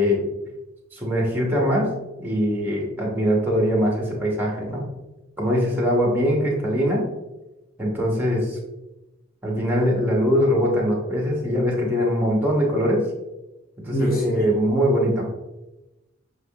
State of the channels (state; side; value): normal; both; correlation 0.57